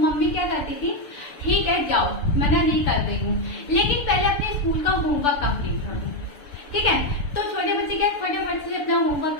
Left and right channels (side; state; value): right; late; 6.9 ms